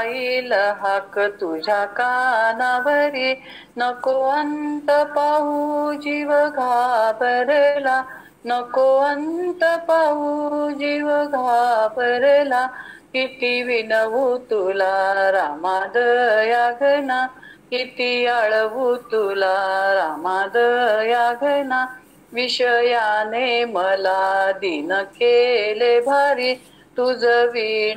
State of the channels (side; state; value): both; identical; correlation 1.00